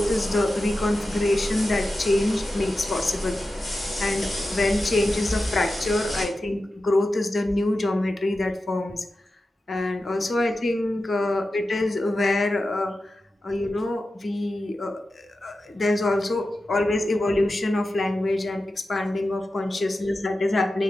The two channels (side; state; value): both; normal; correlation 0.92